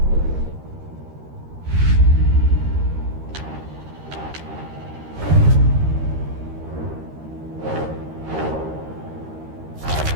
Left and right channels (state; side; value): late; left; 13 ms